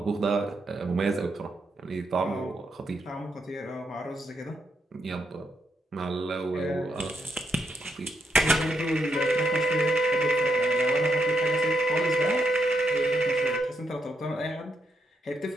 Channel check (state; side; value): normal; both; correlation 0.80